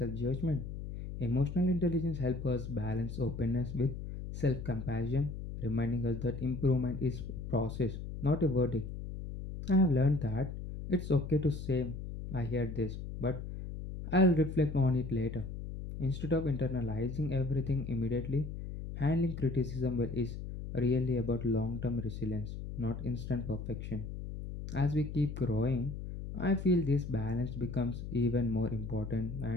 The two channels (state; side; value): noise; left; hum, 8 dB below the sound